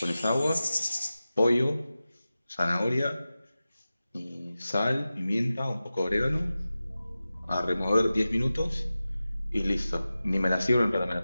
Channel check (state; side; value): inverted; both; correlation -0.95